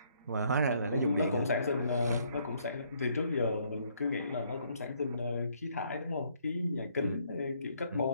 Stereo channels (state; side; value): inverted; both; correlation -0.68